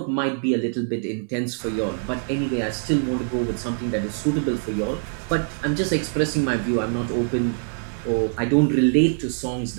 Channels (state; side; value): silent; left; digital silence